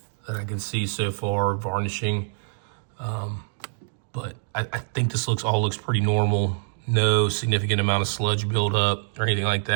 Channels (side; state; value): left; silent; digital silence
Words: that I can see so far, varnishing. But I think this all looks pretty normal. No significant amount of sludge buildup or anything like